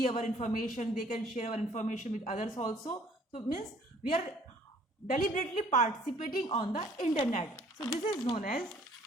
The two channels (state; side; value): normal; both; correlation 0.58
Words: our information, they can share our information with others also. So it means we are deliberately participating on the internet. So this is known as